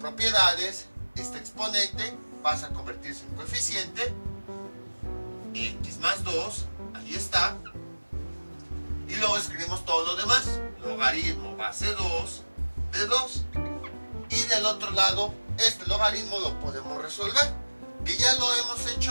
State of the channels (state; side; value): inverted; both; correlation -1.00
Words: este exponente pasa a convertirse en coeficiente, x más 2, ahí está, y luego escribimos todo lo demás, logaritmo base 2 de 2, y del otro lado, este logaritmo lo podemos resolver, que ya lo hemos